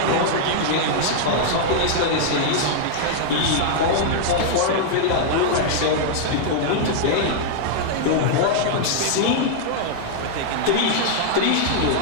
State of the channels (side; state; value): both; different; correlation -0.01